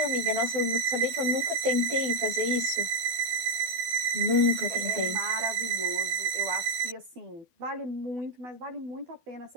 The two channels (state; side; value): late; left; 12 ms